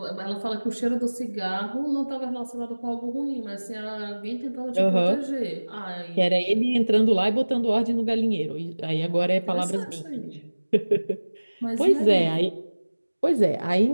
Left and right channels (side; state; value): both; inverted; correlation -1.00